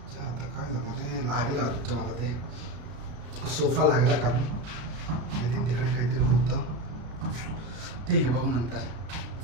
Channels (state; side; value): late; left; 33 ms